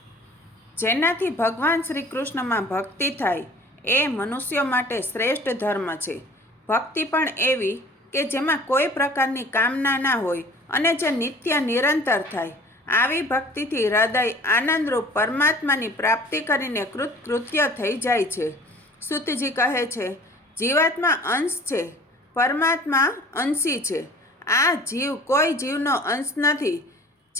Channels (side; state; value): both; normal; correlation 0.48